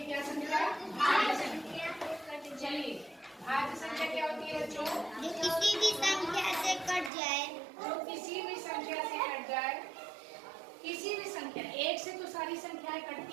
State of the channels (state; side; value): drops out; left; at 7.1 s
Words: संख्या? भाज्य संख्या। चलिए, भाज्य संख्या क्या होती है बच्चों? जो किसी भी संख्या से कट जाए। जो किसी भी संख्या से कट जाए। किसी भी संख्या, एक से तो सारी संख्याएं